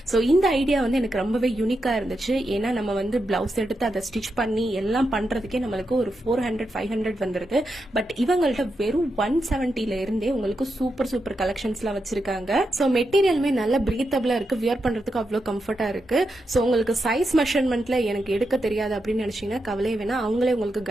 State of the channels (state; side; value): normal; both; correlation 0.86